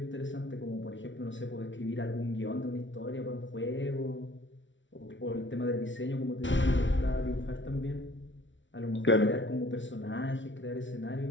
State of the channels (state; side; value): late; right; 0.55 ms